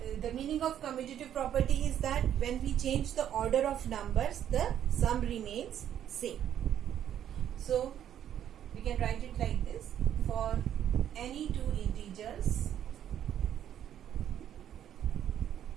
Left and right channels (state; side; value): quieter; left; 10.2 dB